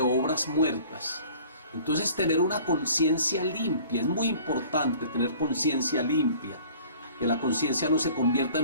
muertas. Entonces tener una conciencia limpia, es muy importante tener conciencia limpia. Que la conciencia no se convierta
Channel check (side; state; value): both; inverted; correlation -0.49